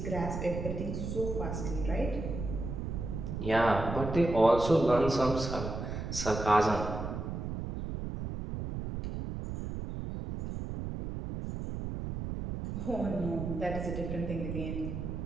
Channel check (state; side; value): noise; right; rumble, 5 dB below the sound